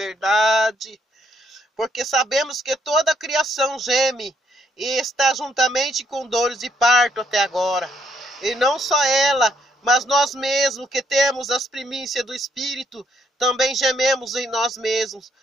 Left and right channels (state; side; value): normal; both; correlation 0.72